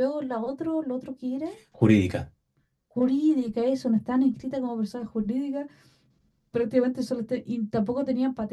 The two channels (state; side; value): identical; both; correlation 1.00